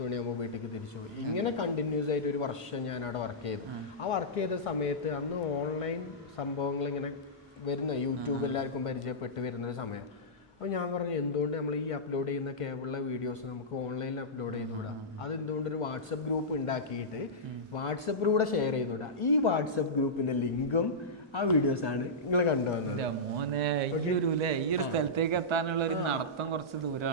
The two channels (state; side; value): normal; both; correlation -0.14